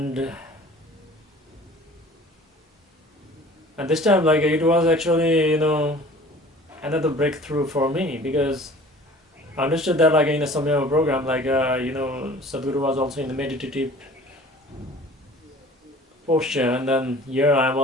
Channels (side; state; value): both; normal; correlation 0.47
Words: this time it was actually another breakthrough for me, because I understood that in a Samyama program Sadhguru was also in the meditative posture, and then here I am